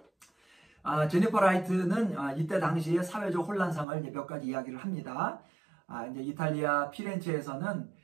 제니퍼 라이트는 이때 당시에 사회적 혼란상을 몇 가지 이야기를 합니다. 이제 이탈리아 피렌체에서는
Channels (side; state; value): left; drops out; at 3.9 s